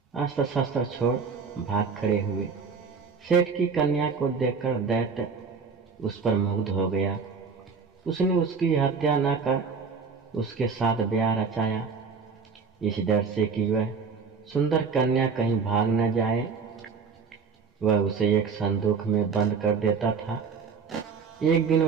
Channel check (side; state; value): left; quieter; 5.4 dB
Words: अस्त्र शस्त्र छोड़ भाग खड़े हुए। सेठ की कन्या को देखकर दैत्य उस पर मुग्ध हो गया। उसने उसकी हत्या न कर उसके साथ ब्याह रचाया, इस डर से कि वह सुंदर कन्या कहीं भाग न जाए। वह उसे एक संदूक में बंद कर देता था। एक दिन